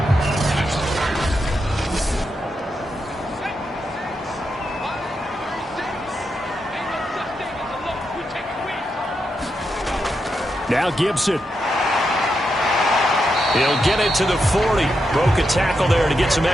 Now Gibson. He'll get it to the 40. Broke a tackle there to get some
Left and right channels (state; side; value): normal; both; correlation 0.84